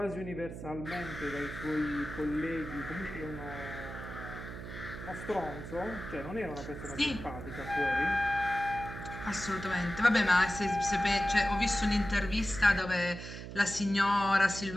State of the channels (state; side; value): noise; right; hum, 10 dB below the sound